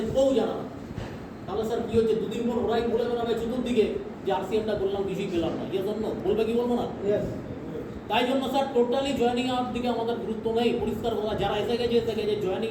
কেউ জানে না। তাহলে স্যার কি হচ্ছে, দুদিন পর ওরাই বলে বেড়াবে চতুর্দিকে যে RCM-টা করলাম, কিছুই পেলাম না। ইয়ে জন্য বলবে কি বলবো না? Yes. তাই জন্য স্যার টোটালি জয়েনিং এর দিকে আমাদের গুরুত্ব নেই। পরিষ্কার কথা, যারা এসে গেছে জয়েনিং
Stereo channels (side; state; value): both; identical; correlation 1.00